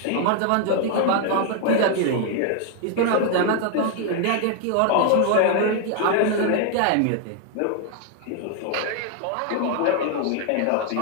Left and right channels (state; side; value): different; both; correlation 0.00